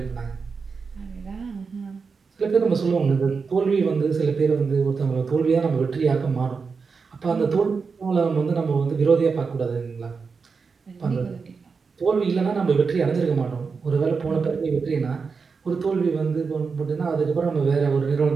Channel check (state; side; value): quieter; left; 5.1 dB